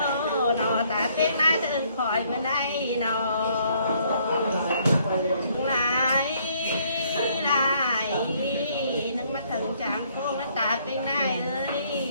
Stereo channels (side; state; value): both; inverted; correlation -0.65